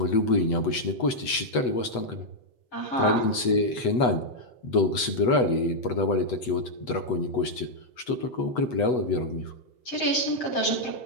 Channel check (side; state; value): right; late; 8.2 ms